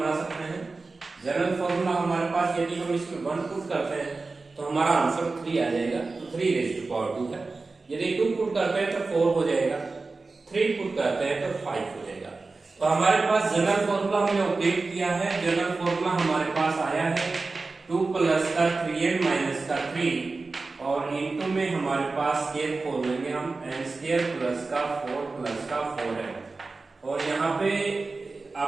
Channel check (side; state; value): left; quieter; 3.8 dB